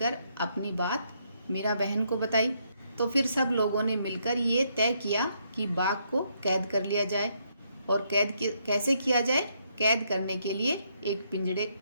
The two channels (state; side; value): inverted; both; correlation -0.74